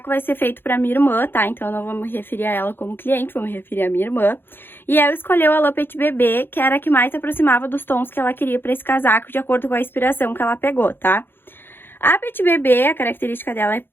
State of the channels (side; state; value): right; late; 0.10 ms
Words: vai ser feito pra minha irmã, tá? Então eu não vou me referir a ela como cliente, vou me referir à minha irmã. E ela escolheu a lã Petit Bébé, que era a que mais se aproximava dos tons que ela queria pra esse casaco, de acordo com a inspiração que ela pegou, tá? A Petit Bébé, a característica dela é